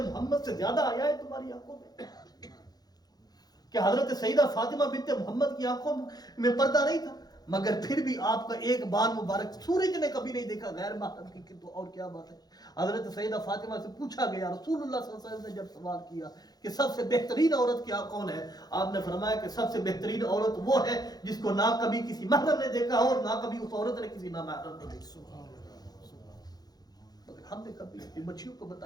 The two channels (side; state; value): right; late; 0.19 ms